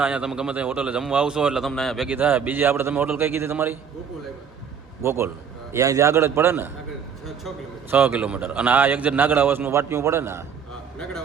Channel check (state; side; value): quieter; left; 7.1 dB